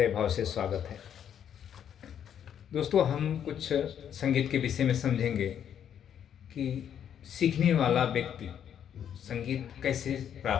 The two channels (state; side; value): quieter; right; 9.1 dB